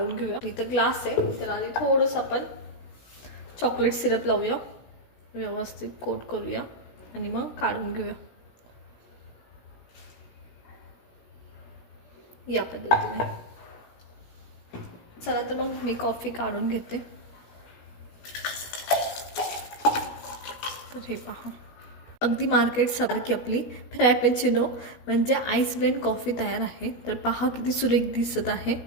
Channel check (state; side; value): late; right; 16 ms